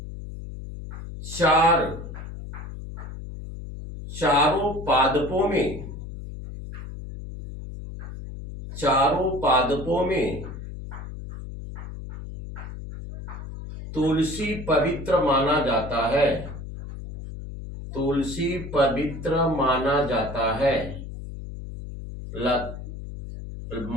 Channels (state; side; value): noise; left; hum, 10 dB below the sound